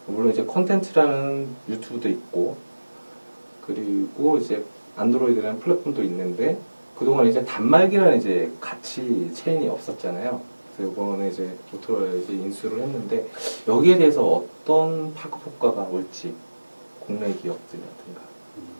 물론 이제 콘텐츠라는 유튜브도 있고 그리고 이제 안드로이드라는 플랫폼도 있는데 그동안 이제 단말기라는 이제 가치 체인이 없었잖아요. 그래서 이번에 이제 모토로라 이제 인수를 했는데 여기에 대해서 어떤 파급 효과가 올지 국내 기업들이라든가.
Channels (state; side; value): inverted; both; correlation -1.00